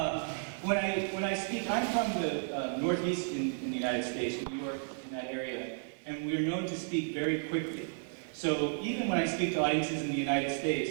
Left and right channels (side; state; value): left; silent; 56 dB below the other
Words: When I speak, I'm from the Northeast in the United States, New York, in that area, and we're known to speak very quickly. So even when I speak to audiences in the United